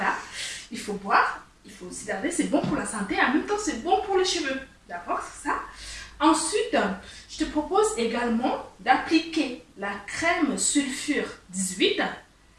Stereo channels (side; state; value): both; identical; correlation 1.00